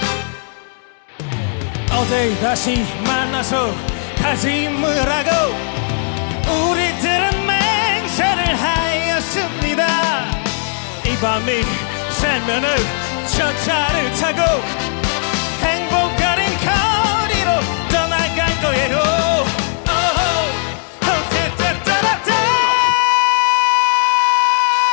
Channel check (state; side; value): silent; right; 68 dB below the other